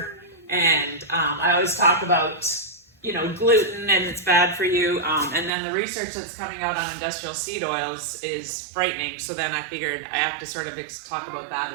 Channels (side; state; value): left; drops out; at 5.5 s